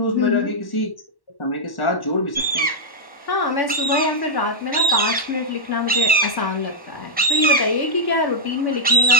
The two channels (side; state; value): right; late; 1.1 ms